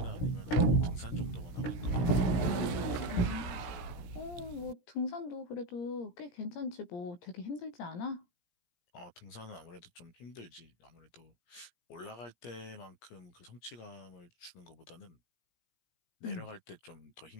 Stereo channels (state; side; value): late; right; 17 ms